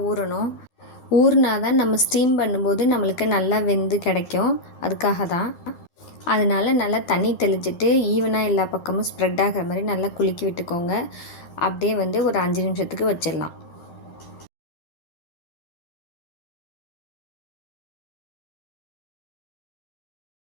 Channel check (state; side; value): late; right; 13 ms